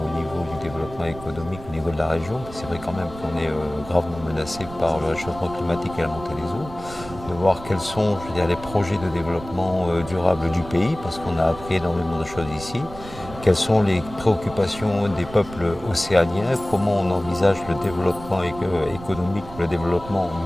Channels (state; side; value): noise; right; rumble, 14 dB below the sound